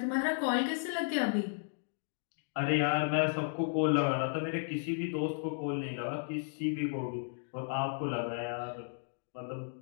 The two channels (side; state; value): right; silent; digital silence